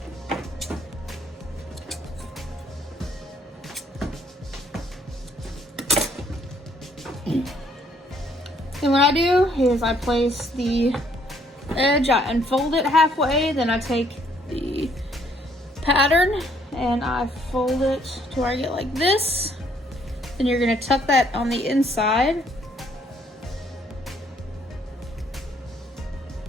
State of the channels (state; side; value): normal; both; correlation 0.66